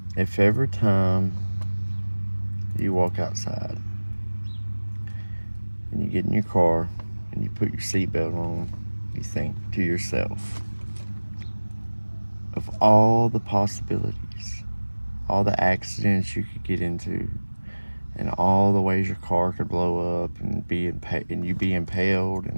If every time you walk outside and you get in your car and you put your seatbelt on, you think to yourself of all the possibilities, all the accidents you could get into, and all the ways your car could blow up and you be impaled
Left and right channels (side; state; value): both; inverted; correlation -1.00